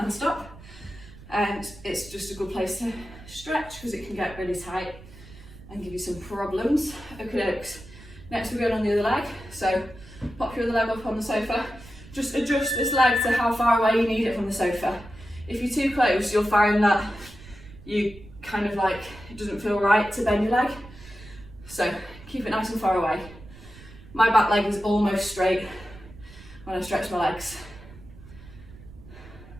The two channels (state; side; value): noise; right; rumble, 19 dB below the sound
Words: stop. And it's just a good place to stretch because it can get really tight and give you some problems. Okay, next we're going on the other leg. So pop your other leg up on the sofa. Just adjust this leg to how far away you need it from the sofa. If you're too close, you'll find that you kind of like, it doesn't feel right to bend your leg. So keep it nice and far away. My back leg is almost straight when I stretch my legs.